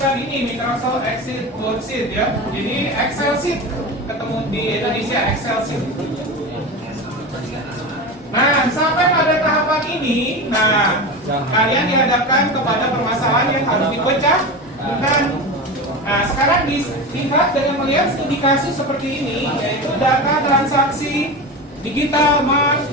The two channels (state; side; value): normal; both; correlation 0.25